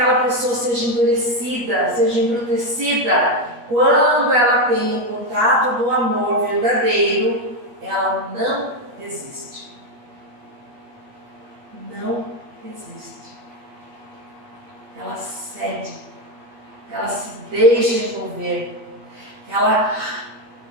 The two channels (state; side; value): late; left; 8.4 ms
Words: pessoa seja endurecida, seja embrutecida, quando ela tem o contato do amor verdadeiro, ela não resiste. Não resiste. Ela cede, ela se deixa envolver, ela